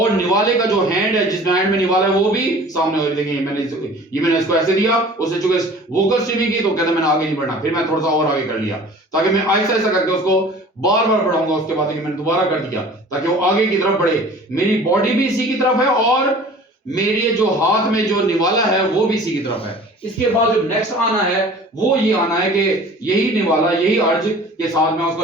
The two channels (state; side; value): normal; both; correlation 0.45